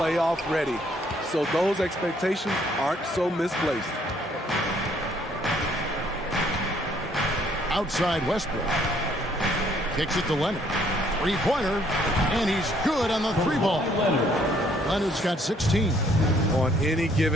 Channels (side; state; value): both; normal; correlation 0.65